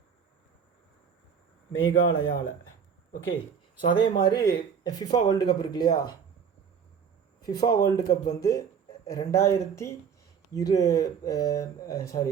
மேகாலயாவில். ஓகே, ஸோ அதே மாதிரி ஃபிஃபா வேர்ல்டு கப் இருக்கு இல்லையா? ஃபிஃபா வேர்ல்டு கப் வந்து 2030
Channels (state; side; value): quieter; left; 7.0 dB